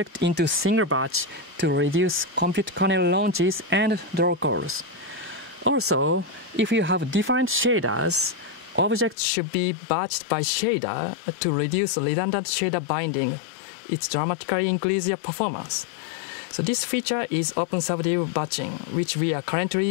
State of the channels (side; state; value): right; drops out; at 9.2 s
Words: into single batch to reduce compute kernel launches and draw calls. Also, if you have different shaders, objects should be batched by shader to reduce redundant shader binding. It dramatically increases your performance. So this feature is OpenSubdiv batching, which we are